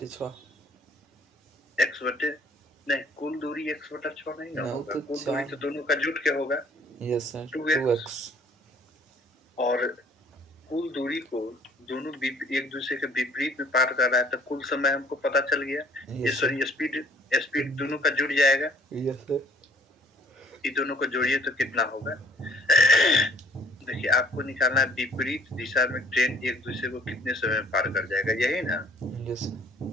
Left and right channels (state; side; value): normal; both; correlation 0.58